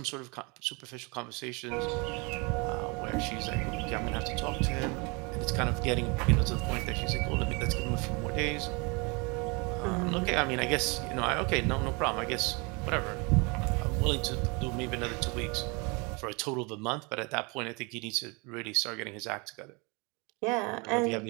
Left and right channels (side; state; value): left; quieter; 29.9 dB